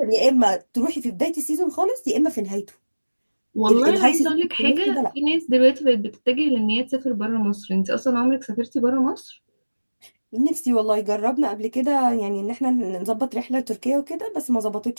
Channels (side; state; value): both; inverted; correlation -1.00